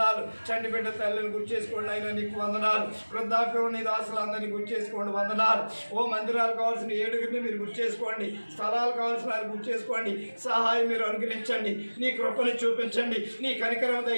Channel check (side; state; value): both; inverted; correlation -1.00